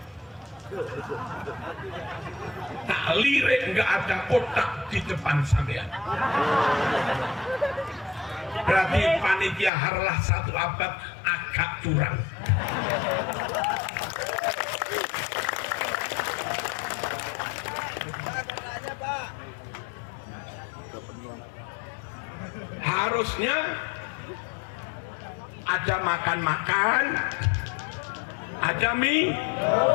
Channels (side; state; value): right; drops out; at 9.7 s